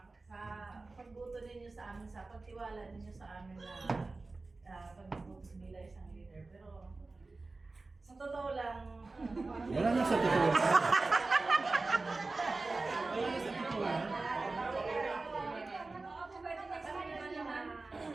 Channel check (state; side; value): quieter; left; 3.5 dB